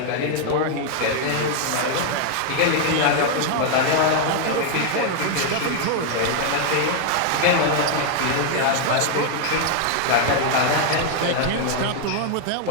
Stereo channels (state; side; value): different; both; correlation 0.00